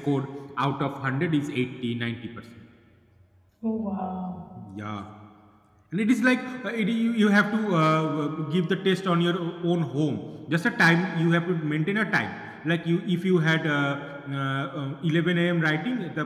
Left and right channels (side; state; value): both; identical; correlation 1.00